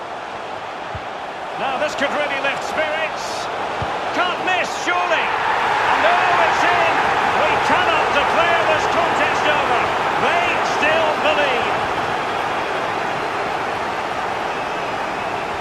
Now this could really lift spirits. Can't miss, surely. And oh, it's in. We cannot declare this contest over. They still believe.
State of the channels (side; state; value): both; identical; correlation 1.00